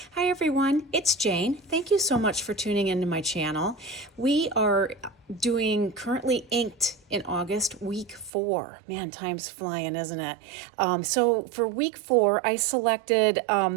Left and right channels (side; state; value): left; drops out; at 8.3 s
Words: Hi everyone, it's Jane. Thank you so much for tuning into my channel. We are doing currently inked in August, week 4. Man, time's flying, isn't it? So for week 4, I selected